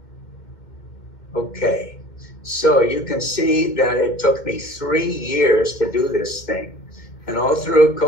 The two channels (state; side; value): late; right; 2.1 ms